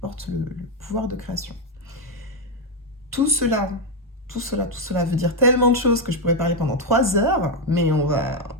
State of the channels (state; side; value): normal; both; correlation 0.04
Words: le pouvoir de création. Tout cela veut dire tellement de choses que je pourrais parler pendant 3 heures, mais on va